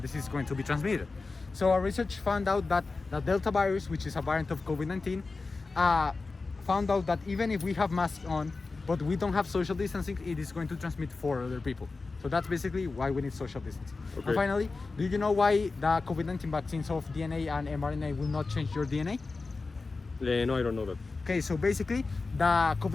is going to be transmitted. So our research found out that the Delta virus, which is a variant of COVID-19, found out that even if we have masks on but we don't have social distancing, it is going to transmit for other people. So that's basically why we need social distancing. Okay. And finally, do you know why the COVID-19 vaccines of DNA and mRNA will not change your DNA? No, I don't know that. Okay, so basically the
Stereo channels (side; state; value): right; quieter; 3.9 dB